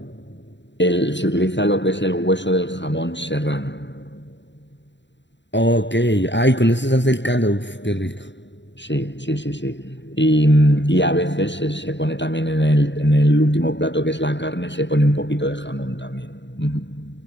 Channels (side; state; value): right; late; 0.52 ms